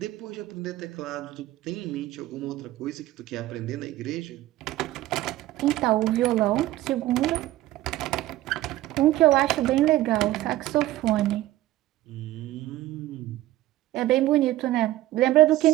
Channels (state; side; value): quieter; left; 15.7 dB